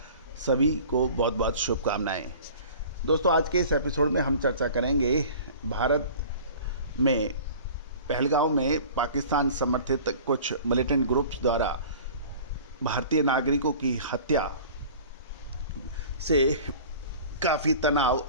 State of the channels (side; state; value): both; inverted; correlation -0.43